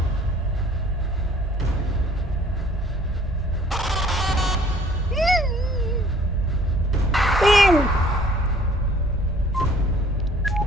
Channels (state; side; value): normal; both; correlation 0.55